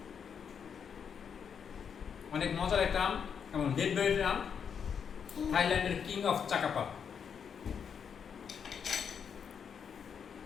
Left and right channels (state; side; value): quieter; right; 7.1 dB